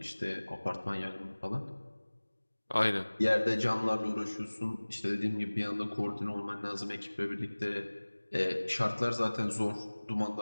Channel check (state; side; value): inverted; both; correlation -1.00